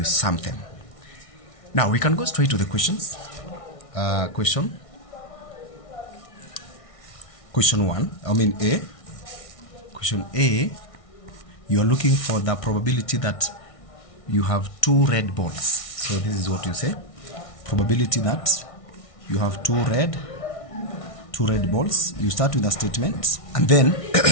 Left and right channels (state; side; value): late; right; 1.6 ms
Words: sum them. Now we can go straight to the questions. Question 1, A. Question A, you are looking for the probability that you have 2 red balls. So this is what you say. Probability that you have 2 red balls. You start with a statement and then